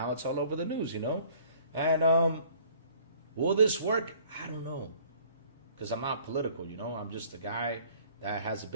it's all over the news, And will this work? I don't know, because I'm not political, I'm just a guy that has a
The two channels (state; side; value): inverted; both; correlation -0.56